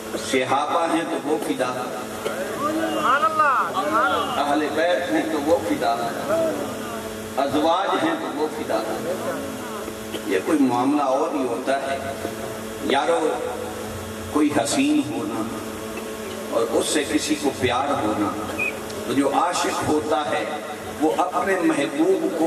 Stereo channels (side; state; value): both; identical; correlation 1.00